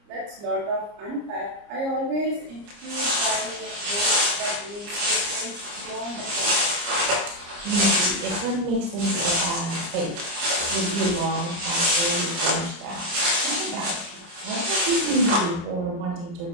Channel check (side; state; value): left; late; 29 ms